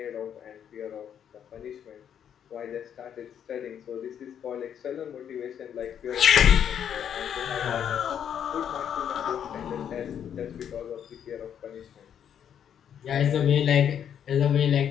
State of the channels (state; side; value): quieter; right; 8.9 dB